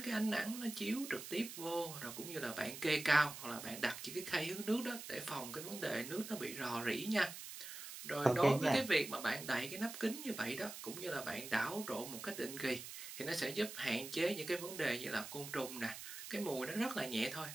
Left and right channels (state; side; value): noise; right; hiss, 10 dB below the sound